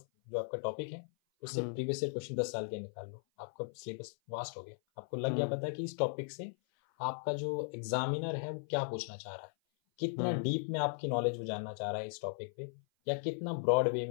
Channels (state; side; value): silent; right; 53 dB below the other